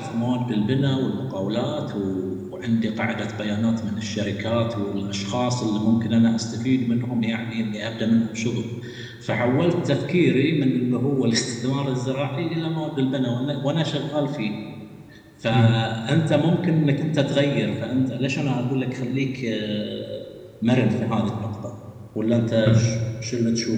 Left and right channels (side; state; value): both; identical; correlation 1.00